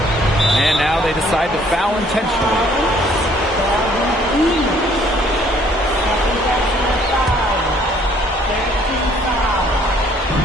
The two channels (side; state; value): both; normal; correlation 0.61